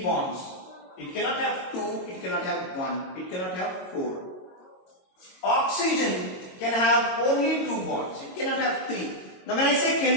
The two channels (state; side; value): late; right; 22 ms